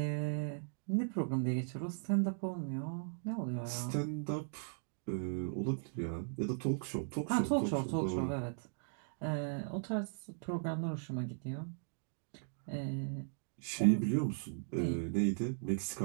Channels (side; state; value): left; silent; digital silence